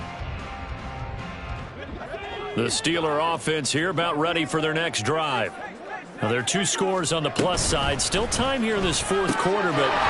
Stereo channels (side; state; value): both; identical; correlation 1.00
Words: The Steeler offense here about ready for their next drive. Now, there are 2 scores on the plus side. Still time here in this 4th quarter, but